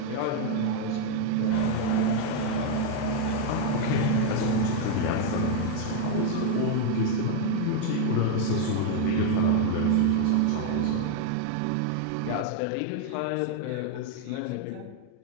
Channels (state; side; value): different; both; correlation 0.00